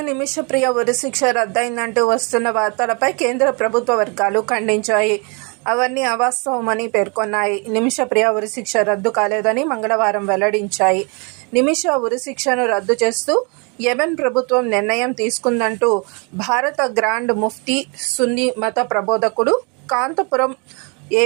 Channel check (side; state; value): left; quieter; 32.9 dB